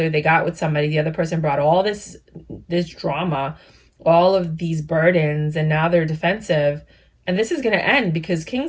They got with somebody. The other person brought all this drama, all of these burdens, and now they're defensive. And this is going to end because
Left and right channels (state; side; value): identical; both; correlation 1.00